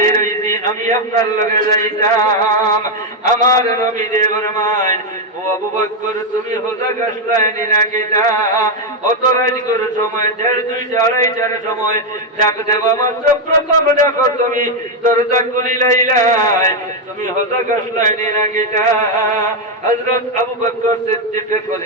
হইছি আমি আপনার লগে যাইতাম আমার নবী দে ফরমান ও আবু বকর তুমি হোজা গাছলাইনি না কিটা অত রাত করে সময় 1:30 2:30 সময় ডাক দেবা মাত্র প্রথম ডাকো তুমি দরজা খুলিলাই তুমি হোজা গাছলাইনি না কিটা হযরত আবু বকর সিদ্দিক কইলেন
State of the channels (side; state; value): both; normal; correlation 0.03